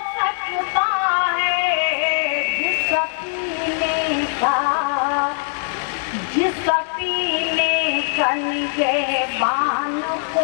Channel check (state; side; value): silent; right; 65 dB below the other